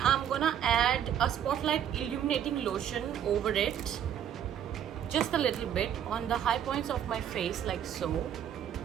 I'm gonna add a spotlight illuminating lotion over it, just a little bit on the high points of my face like so.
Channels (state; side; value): quieter; left; 9.6 dB